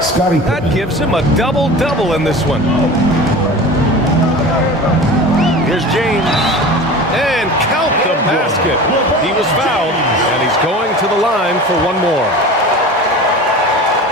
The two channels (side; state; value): both; normal; correlation 0.35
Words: That gives him a double-double in this one. Here's James. And count the basket. He was fouled, and he's going to the line for one more.